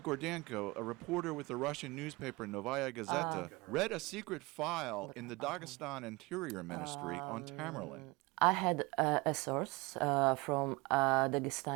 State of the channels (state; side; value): quieter; left; 24.1 dB